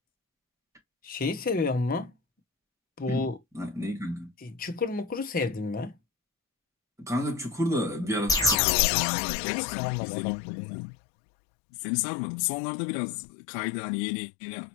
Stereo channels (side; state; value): right; drops out; at 8.6 s